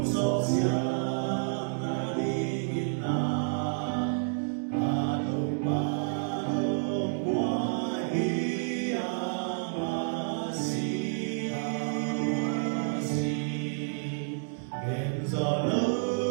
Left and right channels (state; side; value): silent; left; 58 dB below the other